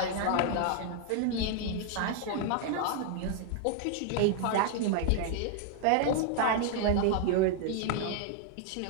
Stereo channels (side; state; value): both; different; correlation 0.00